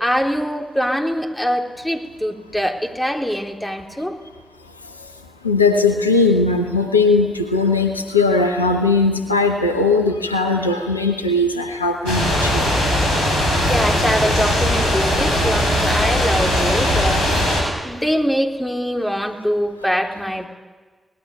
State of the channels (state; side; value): normal; both; correlation 0.45